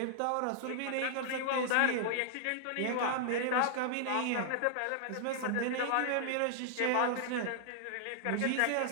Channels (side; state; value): both; different; correlation -0.01